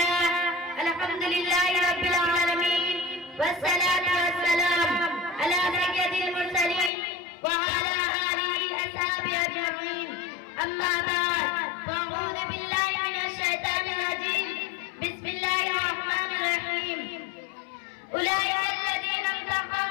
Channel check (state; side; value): drops out; right; at 6.9 s